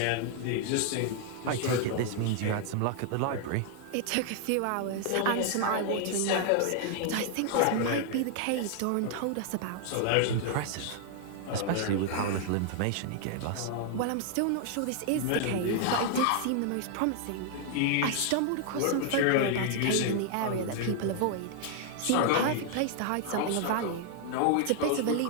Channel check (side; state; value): both; different; correlation 0.00